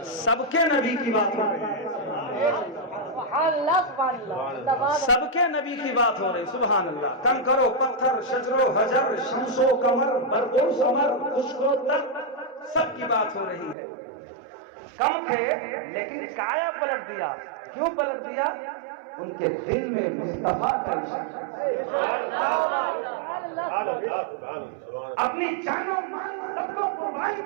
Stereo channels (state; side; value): drops out; left; at 13.8 s